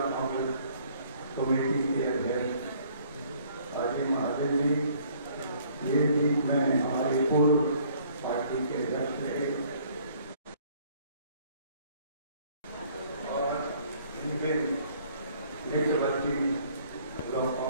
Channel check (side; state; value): both; inverted; correlation -0.59